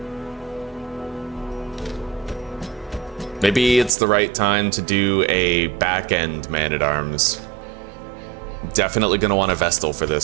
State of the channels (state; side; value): drops out; left; at 3.9 s